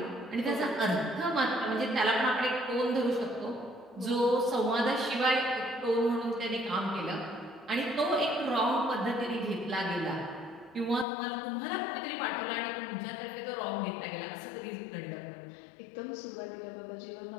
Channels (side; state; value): right; drops out; at 11.1 s